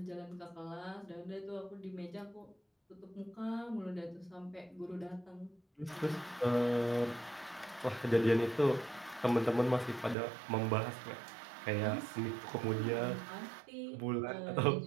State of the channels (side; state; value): left; drops out; at 10.2 s